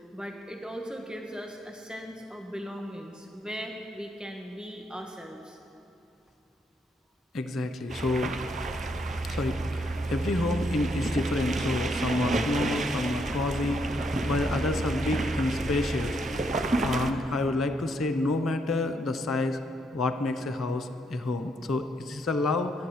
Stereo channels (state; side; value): normal; both; correlation 0.75